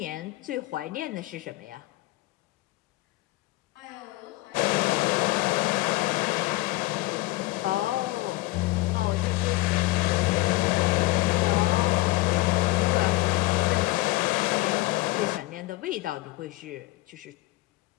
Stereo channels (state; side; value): quieter; right; 19.9 dB